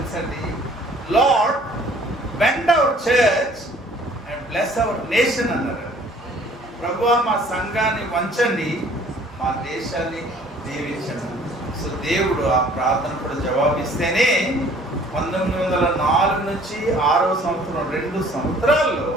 Lord bend our church and bless our nation అన్నారు. ప్రభువా మా సంఘాన్ని వంచండి, మా దేశాన్ని దీవించండి. సో దేవుడు ఆ ప్రార్థన కూడా జవాబిస్తేనే 1904 నుంచి 6వ సంవత్సరం 2 సంవత్సరాల్లో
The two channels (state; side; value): normal; both; correlation 0.55